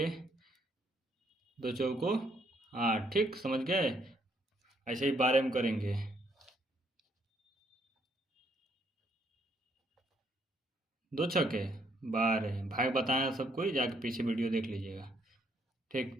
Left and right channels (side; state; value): both; normal; correlation 0.70